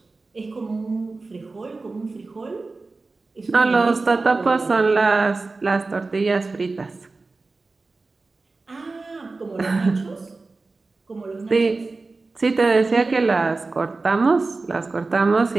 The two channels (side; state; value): left; quieter; 3.7 dB